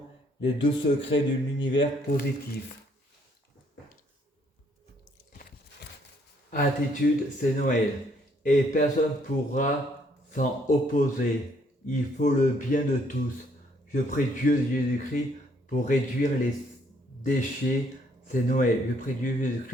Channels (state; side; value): normal; both; correlation 0.67